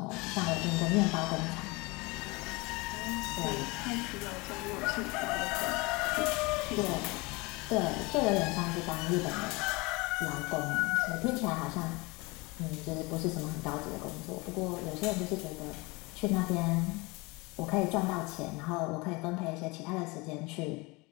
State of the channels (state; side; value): quieter; right; 25.2 dB